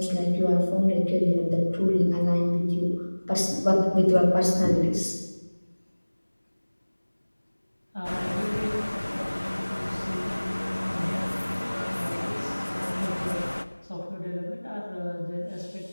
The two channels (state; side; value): inverted; both; correlation -1.00